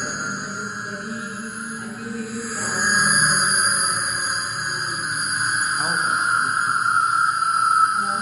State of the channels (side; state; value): both; identical; correlation 1.00